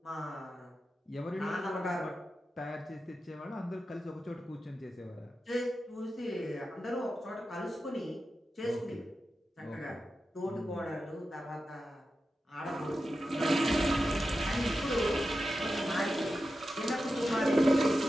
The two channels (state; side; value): normal; both; correlation 0.91